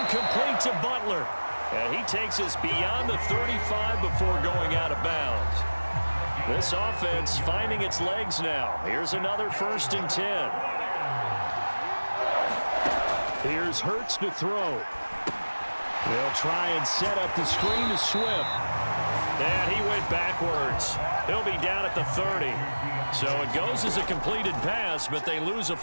complete to Butler. And he takes us beyond the 35 before going out of bounds. This offense finding its legs now. Here's another 1st and 10. Here's Hurts to throw. They'll try and set up the screen to Swift. And he went backwards. He'll be down at the 30. So it goes as a completed pass, but they lose a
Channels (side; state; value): both; inverted; correlation -1.00